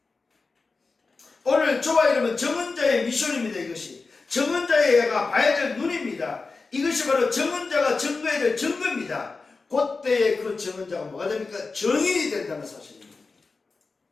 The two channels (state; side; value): quieter; right; 4.1 dB